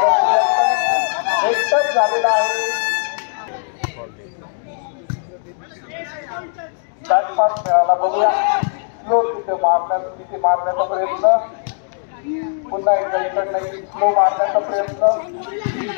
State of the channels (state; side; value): silent; right; digital silence